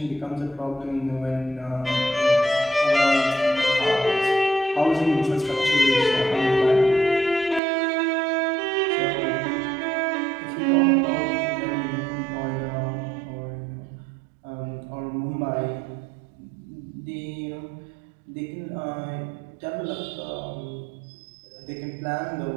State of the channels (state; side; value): drops out; left; at 7.6 s